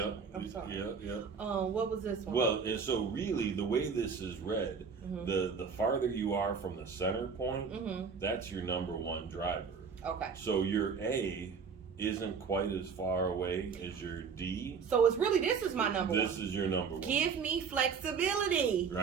I'm sorry. Yeah. What was this one? Well, and so really the way this is read, the farther you are from the center point, that's your number one driver. Okay. So your A isn't quite as far away as your D. So it's really, this is my number one. This is your number one. Give me flexibility.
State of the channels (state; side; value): quieter; left; 5.9 dB